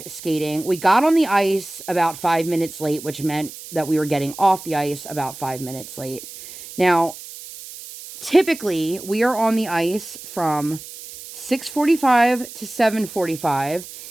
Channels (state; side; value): noise; right; hiss, 14 dB below the sound